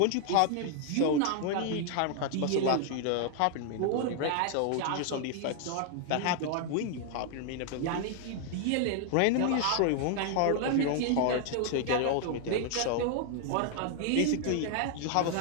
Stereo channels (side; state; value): both; different; correlation 0.00